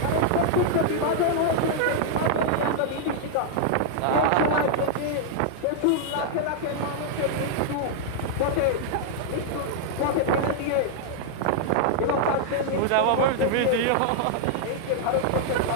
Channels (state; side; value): different; both; correlation -0.01